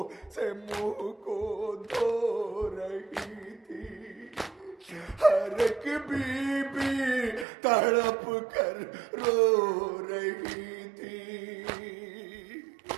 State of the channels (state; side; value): drops out; left; at 7.5 s